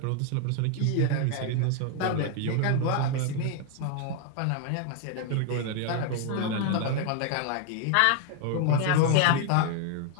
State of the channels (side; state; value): both; different; correlation 0.00